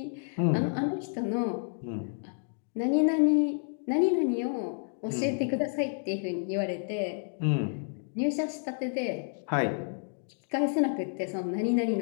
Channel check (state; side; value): silent; right; 58 dB below the other